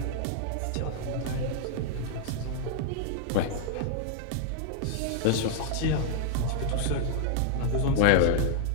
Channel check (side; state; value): both; different; correlation -0.01